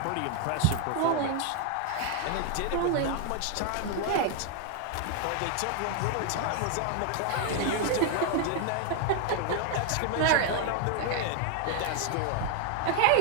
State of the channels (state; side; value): different; both; correlation 0.00